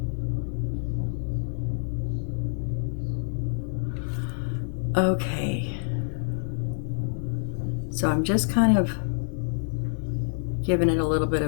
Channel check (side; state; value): right; silent; digital silence